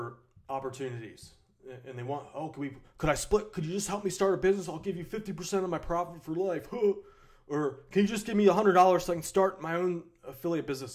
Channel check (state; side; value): identical; both; correlation 1.00